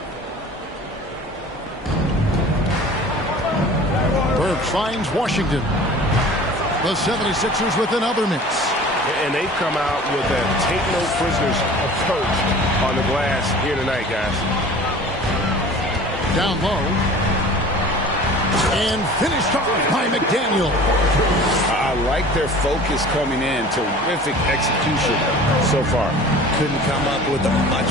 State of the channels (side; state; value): both; normal; correlation 0.43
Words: Finds Washington. The 76ers with another miss. And they've come out with a take-no-prisoners approach on the glass here tonight, guys. Down low. And finished off by McDaniel. I like their focus coming in. Terrific execution so far. Couldn't come up with a much